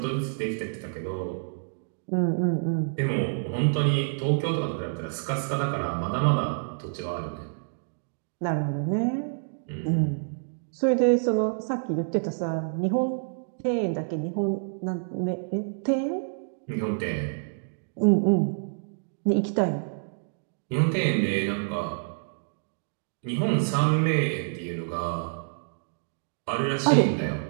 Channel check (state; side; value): silent; left; digital silence